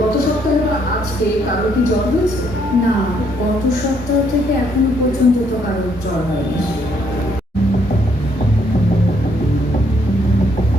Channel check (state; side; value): normal; both; correlation 0.70